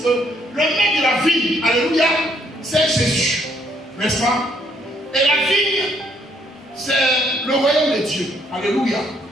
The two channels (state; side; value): normal; both; correlation 0.68